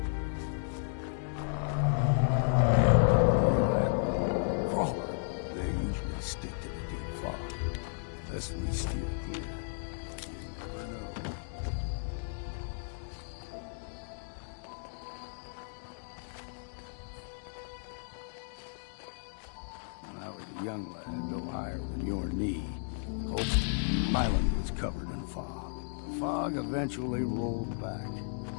Crawler, they usually stick to the deep fog. Unless we steer clear. You never know. When I was a young lad, no higher than your knee, Hope Island was covered in fog. The fog eventually rolled back.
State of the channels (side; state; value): right; silent; digital silence